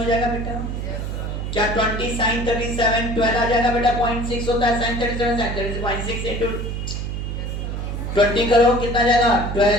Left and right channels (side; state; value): right; noise; hum, 4 dB below the sound